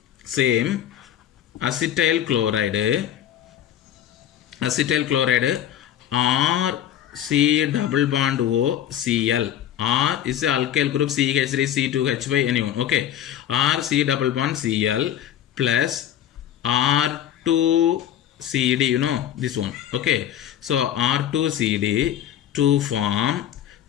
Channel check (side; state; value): right; quieter; 10.7 dB